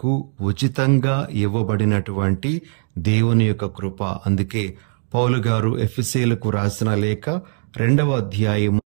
ఉచితంగా ఇవ్వబడినటువంటి దేవుని యొక్క కృప. అందుకే పౌలు గారు ఎఫెసీయులకు రాసిన లేఖ 2వ అధ్యాయము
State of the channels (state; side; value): silent; left; digital silence